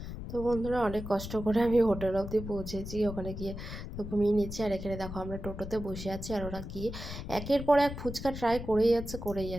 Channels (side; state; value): left; noise; rumble, 8 dB below the sound